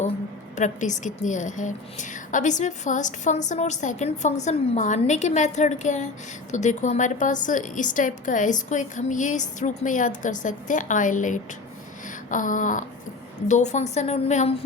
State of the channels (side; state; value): right; quieter; 3.8 dB